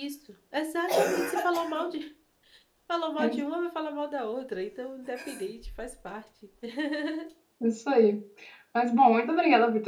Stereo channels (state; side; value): identical; both; correlation 1.00